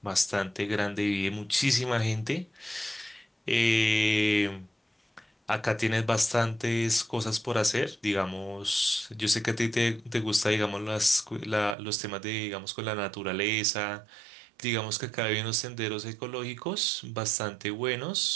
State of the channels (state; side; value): drops out; left; at 11.8 s